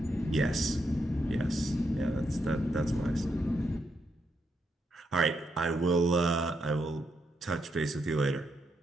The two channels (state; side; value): normal; both; correlation 0.80